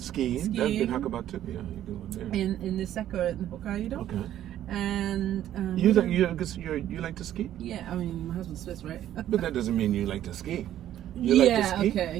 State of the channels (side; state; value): left; quieter; 11.9 dB